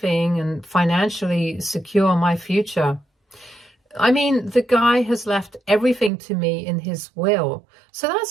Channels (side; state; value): left; drops out; at 6.1 s